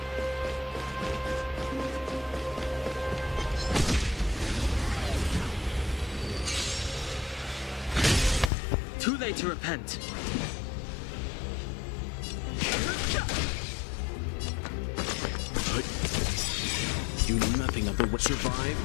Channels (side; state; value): right; drops out; at 8.5 s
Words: Too late to repent. Do nothing of the way.